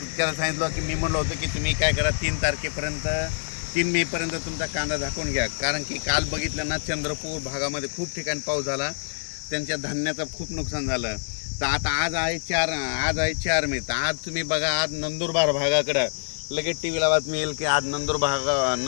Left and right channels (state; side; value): silent; right; digital silence